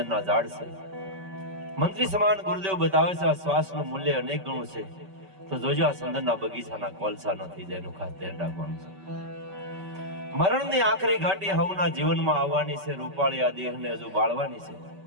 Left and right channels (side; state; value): left; late; 5.2 ms